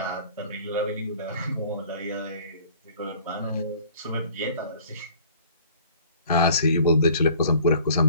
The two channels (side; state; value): both; inverted; correlation -0.52